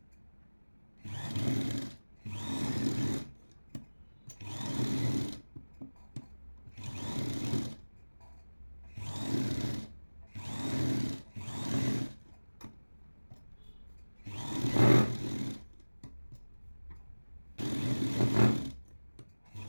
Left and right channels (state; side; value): inverted; both; correlation -1.00